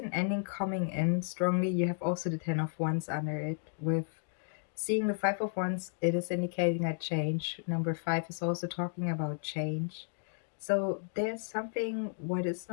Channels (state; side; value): silent; right; digital silence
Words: ending coming in strongly. You have also the Ten of Wands under it. With seeing the Five of Wands, it is indicating a change. Number five is also talking about change. So there's something what is